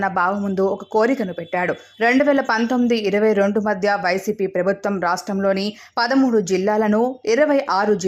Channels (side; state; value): both; identical; correlation 1.00